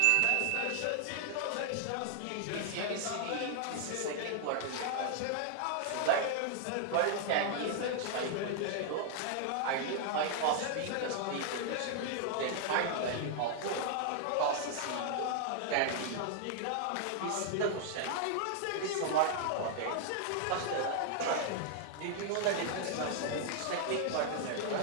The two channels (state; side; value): different; both; correlation 0.00